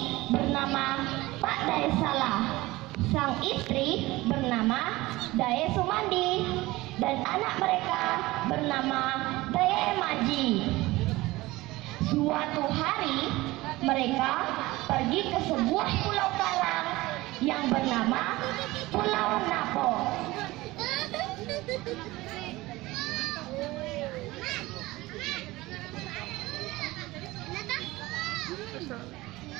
bernama Pak Daesala, sang istri bernama Dae Sumandi, dan anak mereka bernama Dae Maji. Suatu hari mereka pergi ke sebuah pulau karang yang bernama Pulau Napo.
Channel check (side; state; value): left; quieter; 19.6 dB